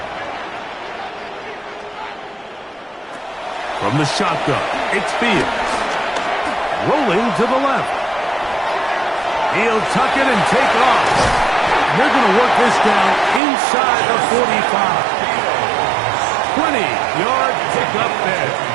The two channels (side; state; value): left; drops out; at 13.4 s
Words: From the shotgun, it's Fields. Rolling to the left. He'll tuck it and take off. They're going to work this down inside the 45. 20-yard pickup there.